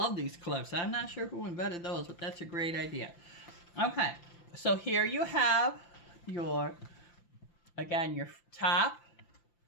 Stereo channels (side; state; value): right; late; 5.8 ms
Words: these clips. I'm not sure who invented those, but that's a great idea. Okay, so here you have your, again, your top